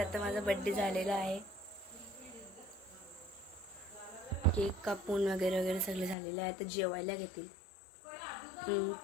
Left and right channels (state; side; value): drops out; right; at 6.2 s